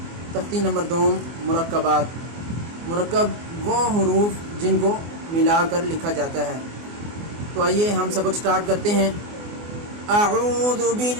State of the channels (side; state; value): left; late; 24 ms